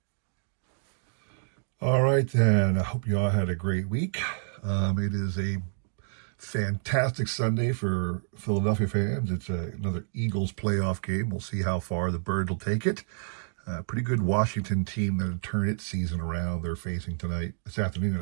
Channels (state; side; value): silent; left; digital silence